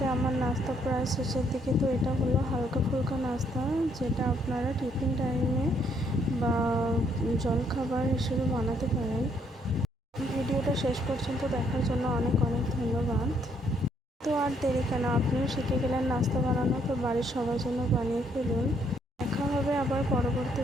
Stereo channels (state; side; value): normal; both; correlation 0.70